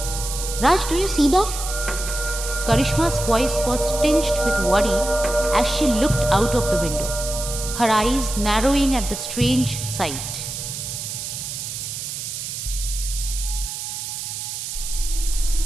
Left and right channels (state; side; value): noise; right; hiss, 6 dB below the sound